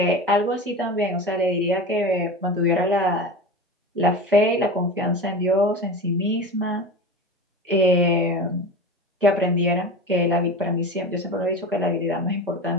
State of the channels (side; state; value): both; normal; correlation 0.29